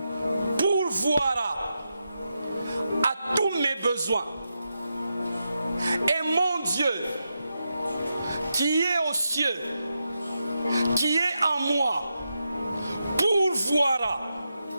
pourvoira à tous mes besoins. Et mon Dieu qui est aux cieux, qui est en moi, pourvoira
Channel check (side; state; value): both; inverted; correlation -0.87